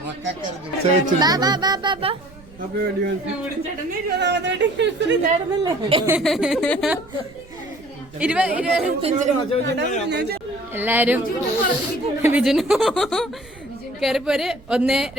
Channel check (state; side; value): noise; right; rumble, 24 dB below the sound